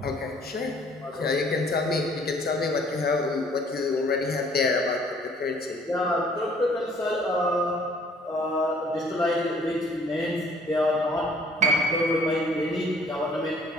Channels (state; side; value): normal; both; correlation 0.58